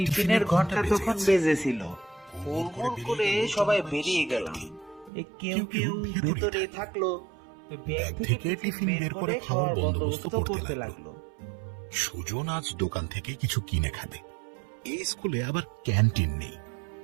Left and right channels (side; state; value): left; drops out; at 5.1 s